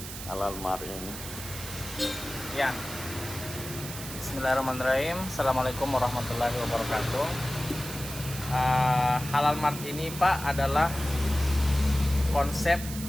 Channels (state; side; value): noise; right; hiss, 10 dB below the sound